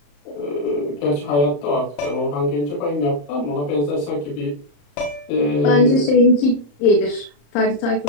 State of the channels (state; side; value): late; right; 34 ms